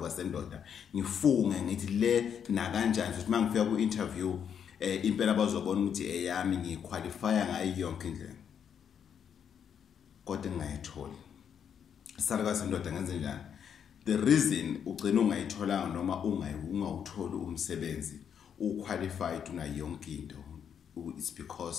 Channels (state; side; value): quieter; right; 8.0 dB